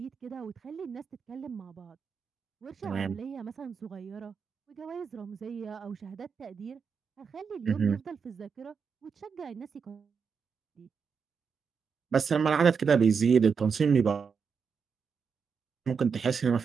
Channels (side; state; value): left; quieter; 6.0 dB